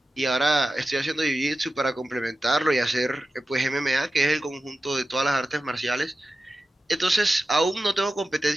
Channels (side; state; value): both; normal; correlation 0.93